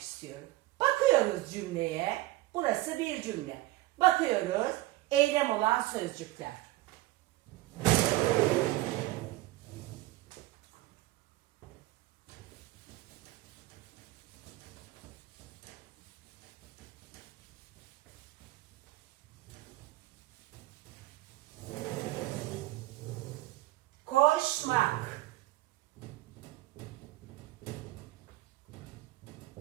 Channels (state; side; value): quieter; left; 18.3 dB